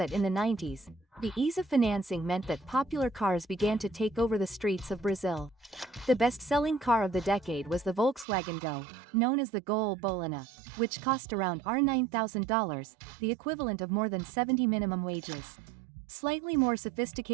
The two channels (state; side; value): drops out; left; at 8.2 s